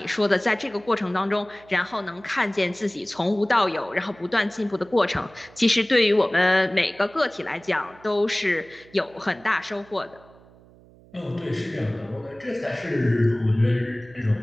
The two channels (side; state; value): right; noise; hum, 25 dB below the sound